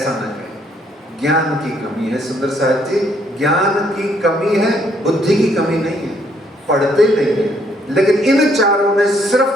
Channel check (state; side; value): normal; both; correlation 0.69